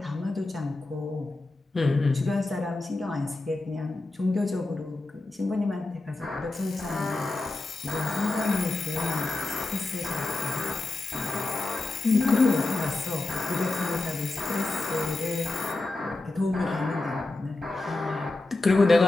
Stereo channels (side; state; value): right; quieter; 3.0 dB